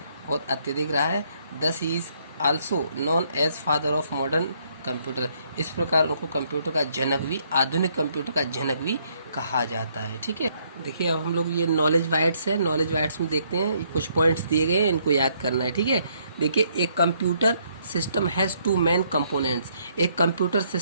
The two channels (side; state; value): both; inverted; correlation -0.69